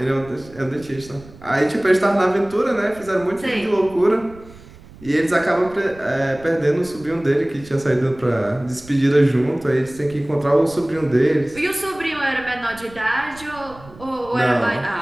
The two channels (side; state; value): right; noise; rumble, 20 dB below the sound